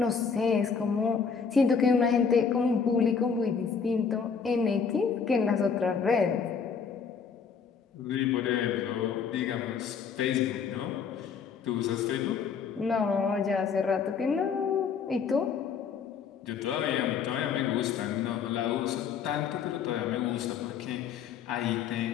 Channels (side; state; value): right; quieter; 6.2 dB